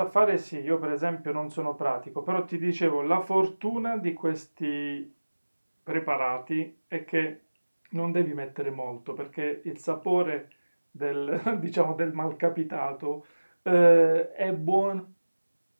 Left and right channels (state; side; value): inverted; both; correlation -1.00